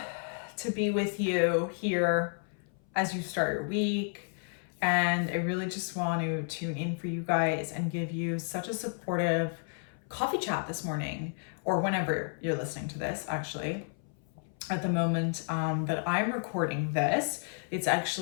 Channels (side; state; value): right; silent; 57 dB below the other